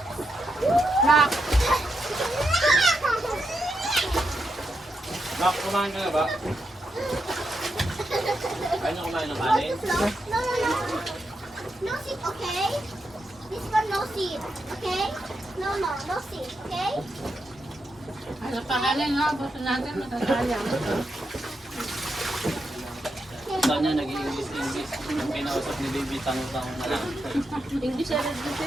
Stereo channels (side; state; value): both; normal; correlation 0.84